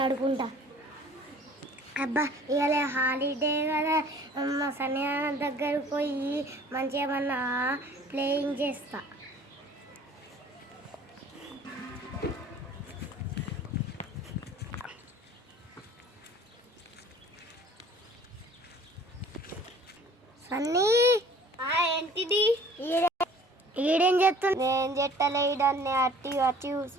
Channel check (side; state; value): both; normal; correlation 0.50